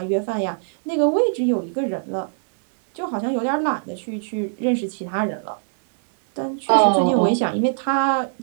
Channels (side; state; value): left; silent; digital silence